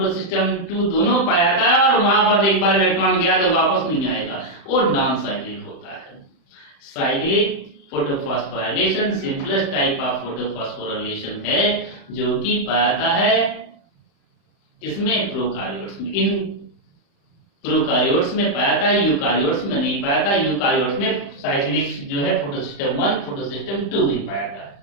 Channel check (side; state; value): right; late; 35 ms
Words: 2 दोनों पाया जाता है और वहां पर एक बार इलेक्ट्रॉन गया तो वापस नहीं आएगा, वो नॉन साइक्लिक होता है। Cyclic photophosphorylation simplest type of photophosphorylation है जो कि पाया जाता है इसमें प्रोकारियोट्स में। इन प्रोकारियोट्स में पाया जाता है, यूकारियोट्स में नहीं पाया जाता। यूकारियोट्स में साइक्लिक जो है फोटोसिस्टम 1 फोटोसिस्टम 2 ही पाया जाता है।